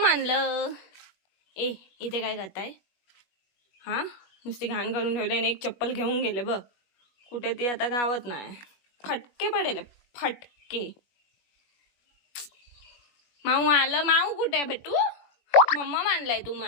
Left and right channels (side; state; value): right; late; 21 ms